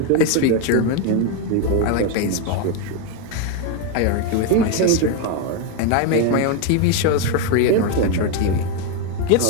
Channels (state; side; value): different; both; correlation 0.02